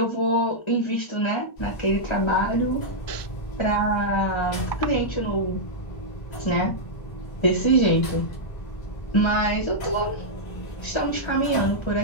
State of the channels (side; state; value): right; late; 1.3 ms